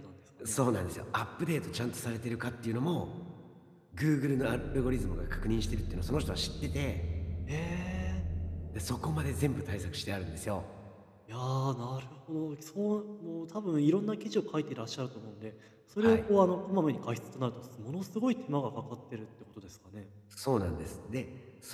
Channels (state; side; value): identical; both; correlation 1.00